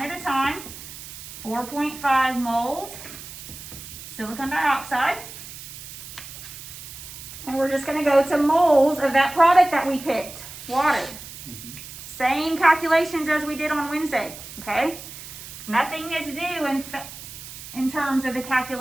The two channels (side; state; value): right; noise; hiss, 13 dB below the sound